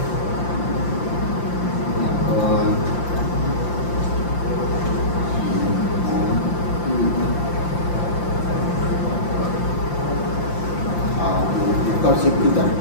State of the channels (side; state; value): right; late; 5.8 ms